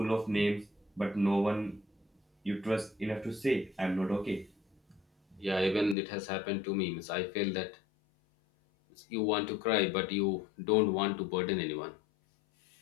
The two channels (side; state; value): right; drops out; at 6.0 s